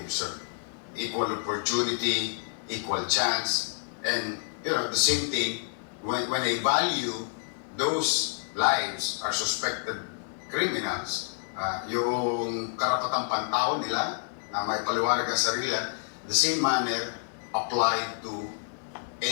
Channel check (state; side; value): silent; right; digital silence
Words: Equal opportunity, equal chance, and the same thing when I value those lives are suspected criminals, yung karapatang pantao nila na may paliwanag ang sarili, the same manner applied to